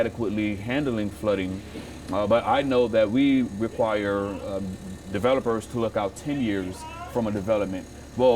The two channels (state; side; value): identical; both; correlation 1.00